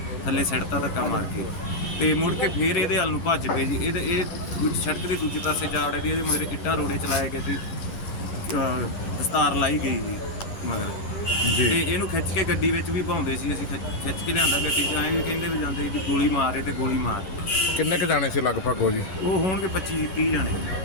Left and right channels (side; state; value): right; late; 11 ms